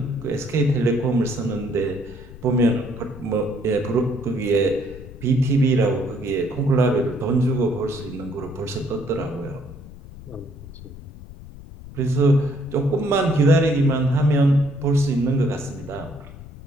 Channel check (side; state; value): left; noise; rumble, 16 dB below the sound